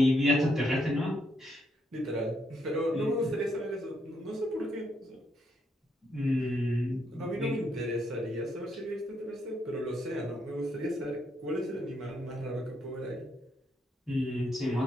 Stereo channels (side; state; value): both; normal; correlation 0.76